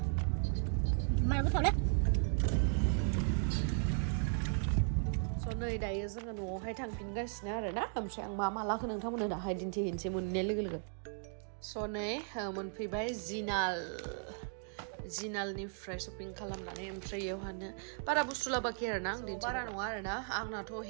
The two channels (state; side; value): silent; left; 53 dB below the other